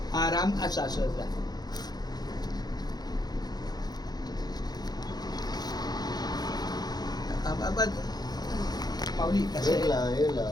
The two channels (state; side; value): late; right; 0.19 ms